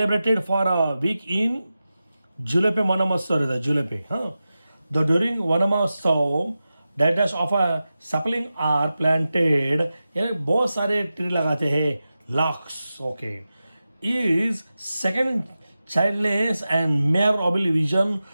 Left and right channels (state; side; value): inverted; both; correlation -0.93